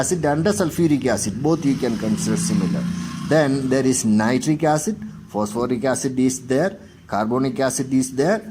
and sulfuric acid. Both you can consider similar. Then there is nitric acid, phosphoric acid is there, carbonic acid is there.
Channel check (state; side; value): identical; both; correlation 1.00